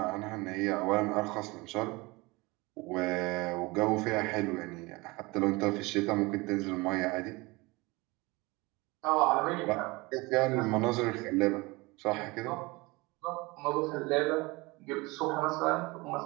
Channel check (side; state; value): left; quieter; 23.9 dB